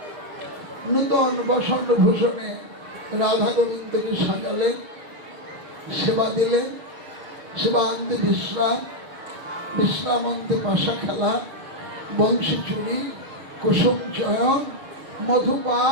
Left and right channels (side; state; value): left; late; 6.4 ms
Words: নূতন বসন্ত ভূষণে রাধা গোবিন্দকে সাজালেন, সেবা দিলেন। সেবা আনতে বিশ্রাম, বিশ্রাম আনতে পাশা খেলা, বংশী চুরি, কুসুম চয়ন,